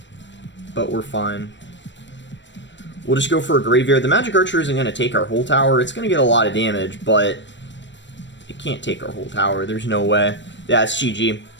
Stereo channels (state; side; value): late; right; 0.53 ms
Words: But we're fine. We'll just go for a graveyard. The Magic Archer isn't going to take our whole tower. It's going to get a lot of damage, but it can't take our whole tower. There's no way. Yeah, it's GG.